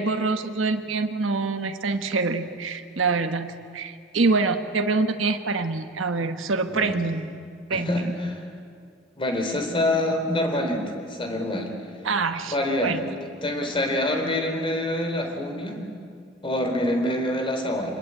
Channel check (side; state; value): both; normal; correlation 0.34